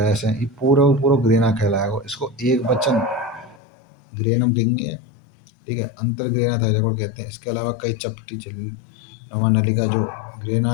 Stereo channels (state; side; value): drops out; right; at 3.6 s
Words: ऐसे ये पूरा ग्रेना कहलाएगा। इसको एक वचन ग्रेनम कहेंगे। ठीक है, अंतर ग्रेना थाइलेकोइड कहते हैं। इसके अलावा कई चपटी झिल्ली नुमा नलिका जो